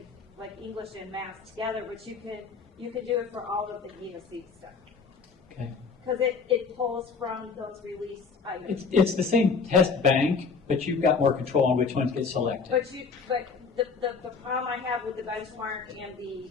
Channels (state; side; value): quieter; right; 5.1 dB